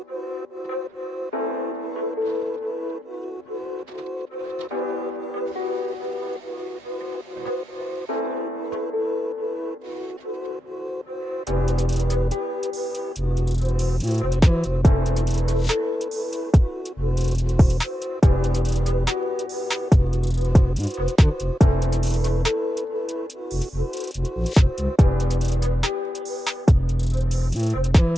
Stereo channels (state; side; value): normal; both; correlation 0.89